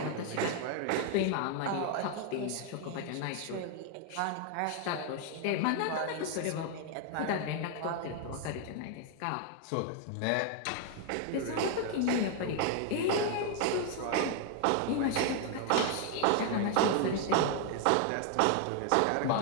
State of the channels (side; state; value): both; different; correlation 0.00